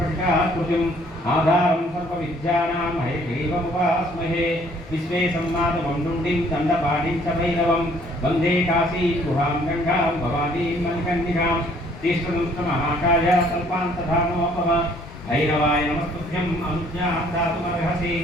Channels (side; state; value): both; normal; correlation 0.60